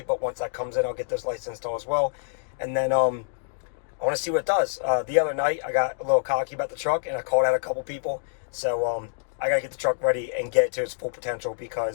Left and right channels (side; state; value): right; silent; digital silence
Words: But once that comes in, I'll get those lights installed as well. And then I want to see what it does. The other night, I got a little cocky about the truck, and I called out a couple people. So I got to get the truck ready and get it to its full potential,